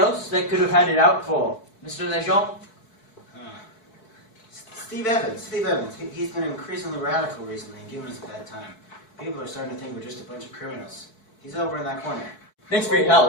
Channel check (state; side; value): late; right; 4.6 ms